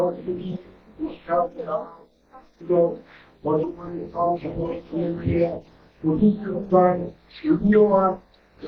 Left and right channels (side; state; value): both; identical; correlation 1.00